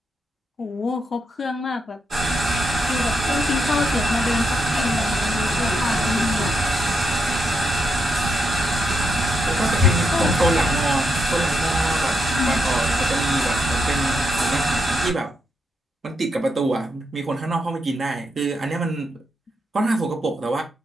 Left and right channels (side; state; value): both; normal; correlation 0.81